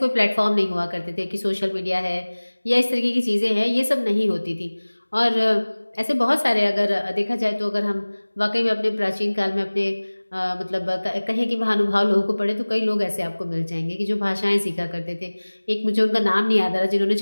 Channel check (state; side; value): inverted; both; correlation -1.00